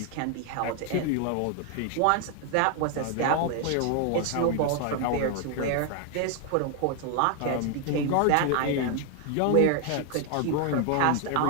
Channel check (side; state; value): both; different; correlation 0.01